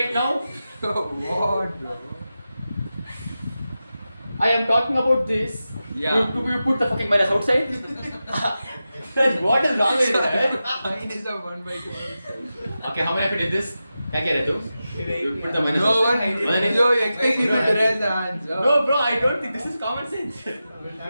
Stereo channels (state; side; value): inverted; both; correlation -0.92